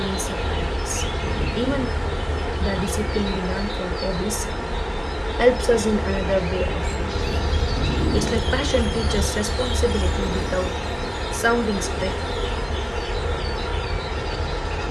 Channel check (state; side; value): identical; both; correlation 1.00